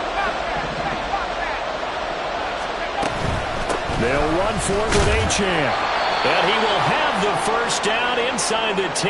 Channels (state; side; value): identical; both; correlation 1.00